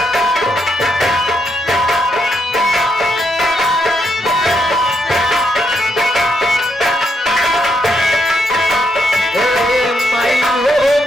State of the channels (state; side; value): normal; both; correlation 0.78